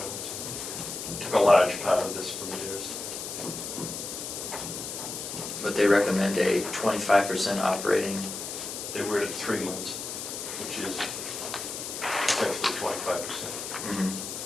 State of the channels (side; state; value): left; noise; hiss, 6 dB below the sound